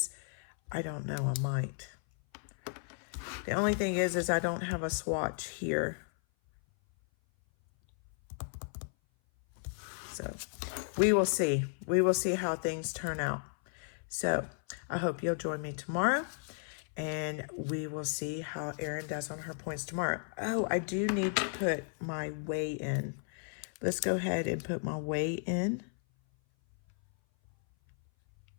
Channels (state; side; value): silent; right; 55 dB below the other